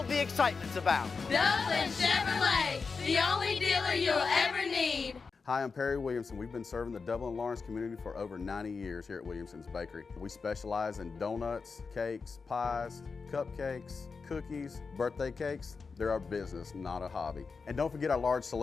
the excitement's about. Dublin Chevrolet, the only dealer you'll ever need. Hi, I'm Perry Williamson. We've been serving the Dublin Lawrence community for over 90 years here at Williamson's Bakery. We specialize in donuts, cakes, pies, cupcakes, cookies, birthday cakes. They're our business, not a hobby. And don't forget our large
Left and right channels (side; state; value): right; quieter; 4.8 dB